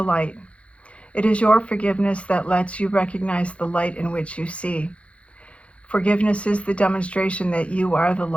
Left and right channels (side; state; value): right; late; 0.062 ms